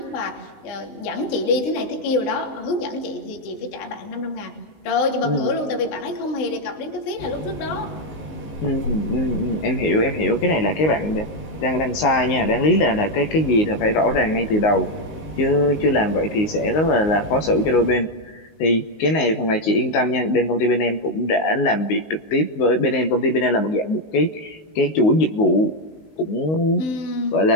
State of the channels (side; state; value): right; late; 19 ms